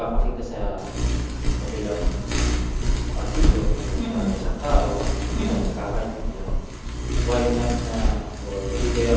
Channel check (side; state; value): both; identical; correlation 1.00